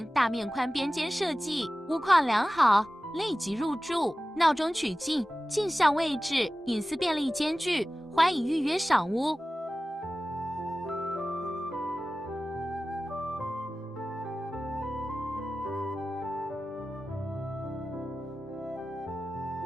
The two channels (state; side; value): normal; both; correlation 0.96